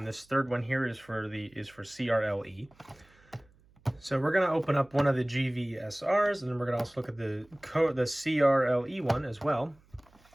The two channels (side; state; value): right; noise; hum, 30 dB below the sound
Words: this third one here is for CRLE. So we're going to open up one of the GVSRs, and then we're going to also look at the CRLE one as well,